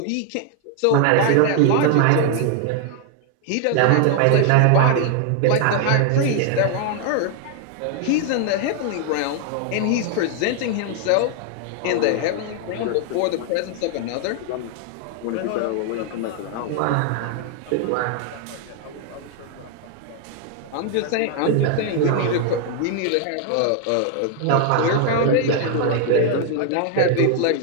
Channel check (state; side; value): different; both; correlation 0.00